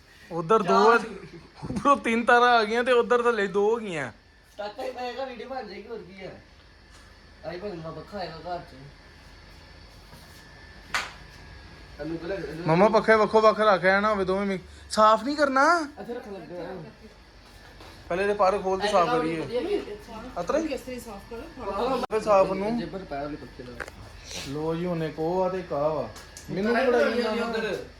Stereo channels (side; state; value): both; identical; correlation 1.00